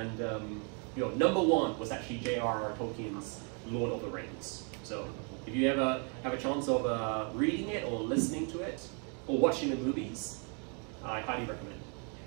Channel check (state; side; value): quieter; left; 38.2 dB